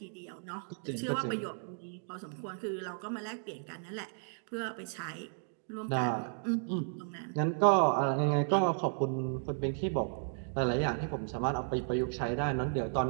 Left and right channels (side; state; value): left; silent; digital silence